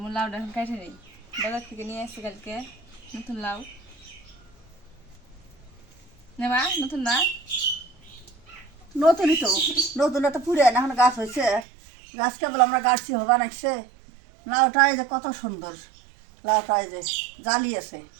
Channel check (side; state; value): left; drops out; at 11.7 s